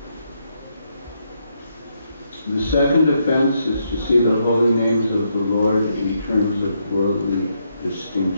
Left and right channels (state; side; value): inverted; both; correlation -0.78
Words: The second offense is to see the holy names of the Lord in terms of worldly